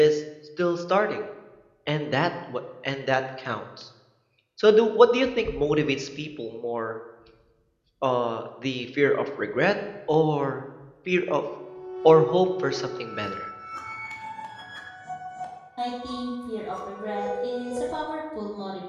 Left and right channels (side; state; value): both; identical; correlation 1.00